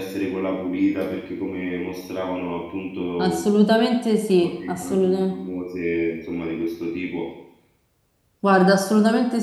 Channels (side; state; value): both; identical; correlation 1.00